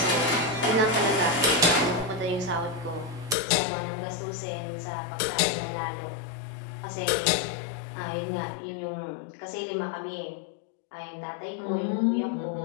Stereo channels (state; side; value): drops out; right; at 3.4 s